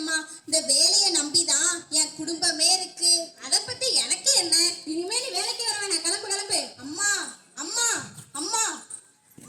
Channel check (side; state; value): both; identical; correlation 1.00